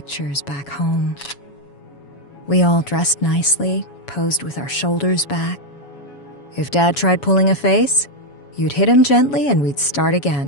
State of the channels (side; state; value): right; late; 7.1 ms